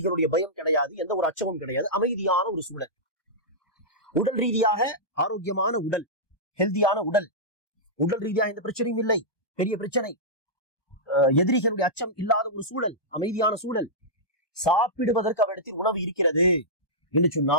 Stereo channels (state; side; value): late; right; 1.2 ms